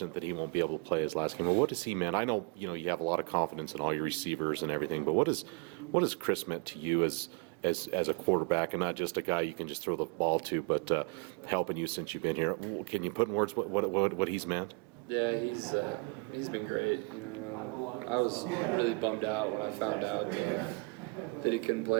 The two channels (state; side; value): quieter; left; 30.4 dB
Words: that he won't be able to play his last game. But what does he mean? I know, you have a lot of confidence in all your receivers and everything, but what has Chris meant to you as a quarterback, and not just a guy you can just throw the ball to, but helping you since you've been here? Can you put in words what he's meant? Yeah, he's been great. I was really bummed out when I found out that he couldn't